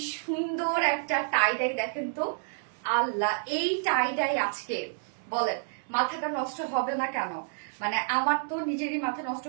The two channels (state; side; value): silent; left; 58 dB below the other